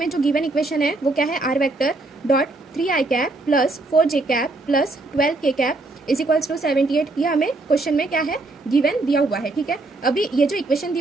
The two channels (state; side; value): quieter; left; 3.1 dB